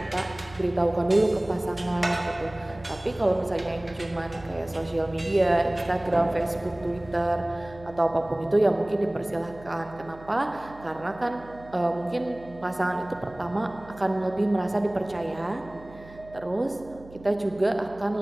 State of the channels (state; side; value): noise; right; hum, 20 dB below the sound